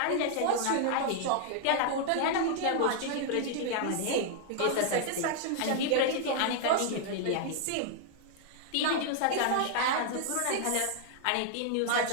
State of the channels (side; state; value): both; different; correlation -0.01